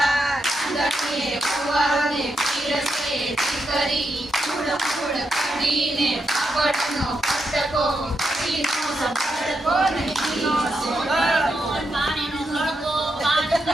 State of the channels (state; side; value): normal; both; correlation 0.84